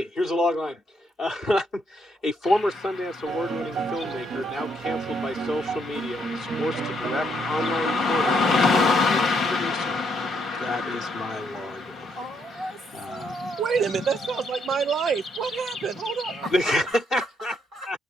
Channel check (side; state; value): both; normal; correlation 0.73